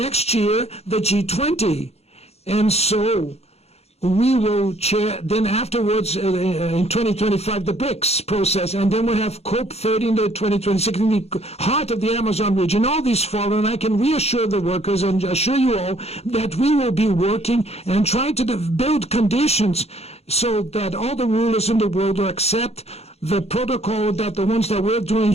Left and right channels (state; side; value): late; right; 0.30 ms